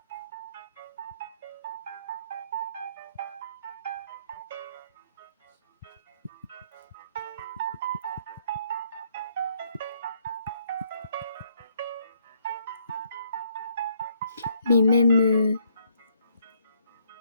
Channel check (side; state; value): both; inverted; correlation -0.69